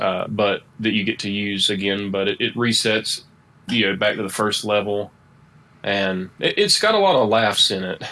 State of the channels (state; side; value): identical; both; correlation 1.00